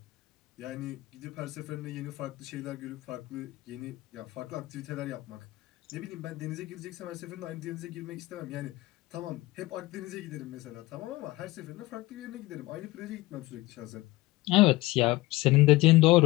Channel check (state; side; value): quieter; right; 19.8 dB